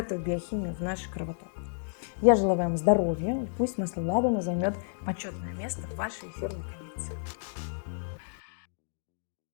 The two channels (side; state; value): right; silent; digital silence